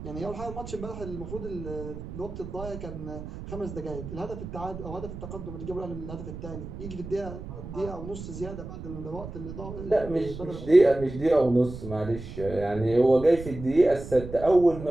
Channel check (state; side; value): noise; right; rumble, 10 dB below the sound